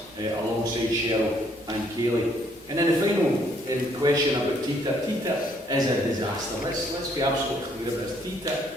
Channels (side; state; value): both; normal; correlation 0.67